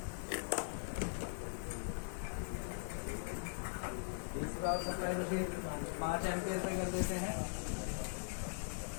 पावर सप्लाई मशीन 5 एम्पियर पे कर देते हैं।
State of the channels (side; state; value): right; silent; digital silence